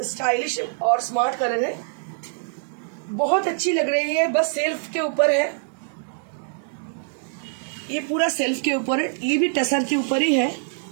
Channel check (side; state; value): left; silent; digital silence